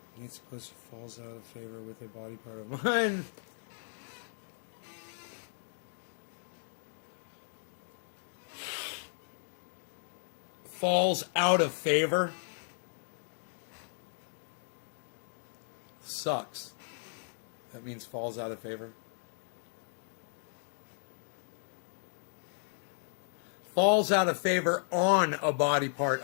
Nancy Pelosi falls out of favor with a body part of mine. falls out of favor. Sucks. That means falls out of favor. Falls out of favor on a body part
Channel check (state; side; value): silent; right; digital silence